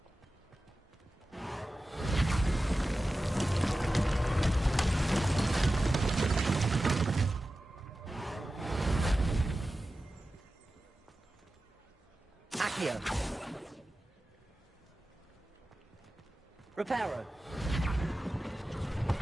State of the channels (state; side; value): normal; both; correlation 0.94